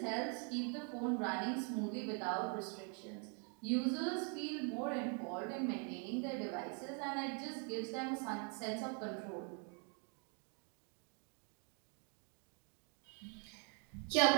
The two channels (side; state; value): left; quieter; 39.3 dB